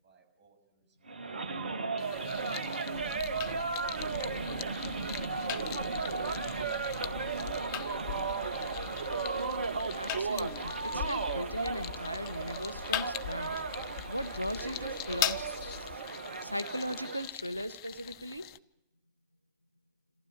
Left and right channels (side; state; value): both; inverted; correlation -0.51